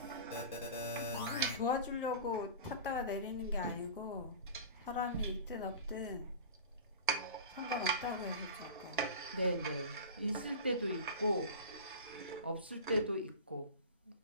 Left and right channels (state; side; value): inverted; both; correlation -0.33